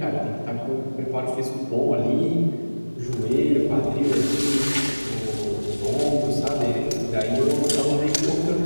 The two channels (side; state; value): both; inverted; correlation -1.00